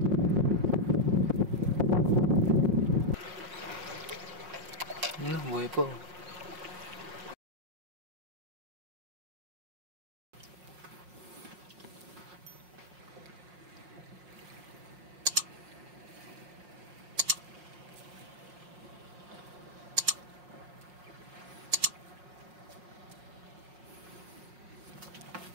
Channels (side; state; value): left; late; 5.5 ms